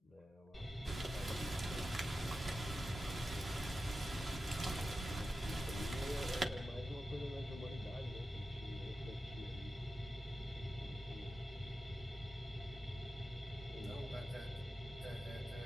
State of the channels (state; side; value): normal; both; correlation 0.92